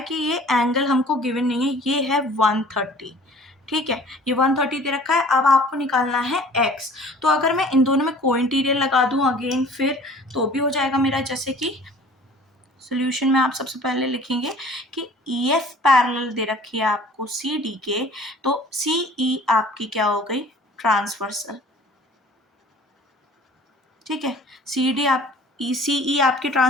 कि ये एंगल हमको गिवन नहीं है, ये है 130। ठीक है, ये 130 दे रखा है। अब आपको निकालना है x। तो अगर मैं इन दोनों में को इंटीरियर लगा दूं अगेन फिर, तो भी हो जाएगा मेरा। जैसे कि सोल्यूशन में आप सबसे पहले लिखेंगे कि EF पैरेलल दे रखी है आपको CD के, तो CE आपकी क्या हो गई, ट्रांसवर्सल। ठीक है, CD आप ECE आपकी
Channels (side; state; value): both; normal; correlation 0.49